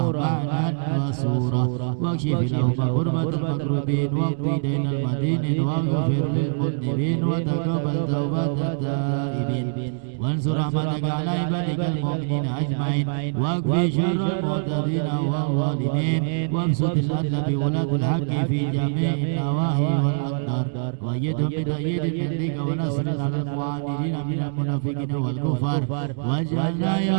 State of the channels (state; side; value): silent; left; digital silence